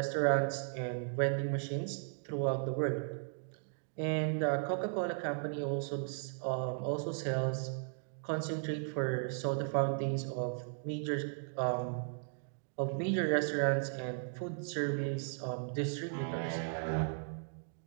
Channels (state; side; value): silent; left; digital silence